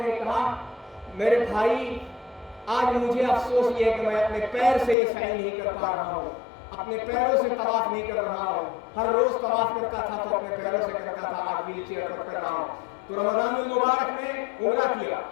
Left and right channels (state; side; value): drops out; right; at 5.0 s